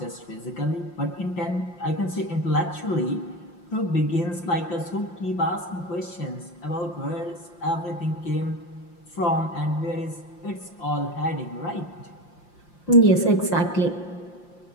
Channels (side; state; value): right; late; 5.7 ms